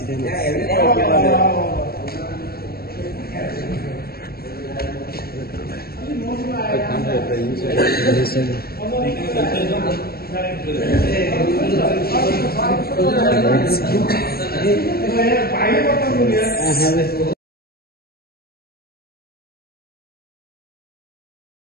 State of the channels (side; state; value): right; late; 0.44 ms